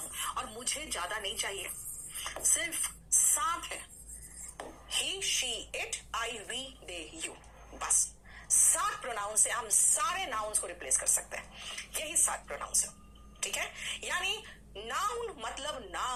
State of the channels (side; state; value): both; identical; correlation 1.00